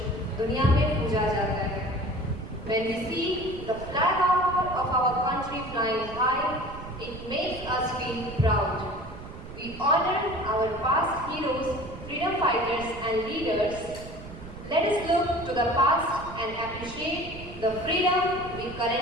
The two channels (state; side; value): noise; right; rumble, 13 dB below the sound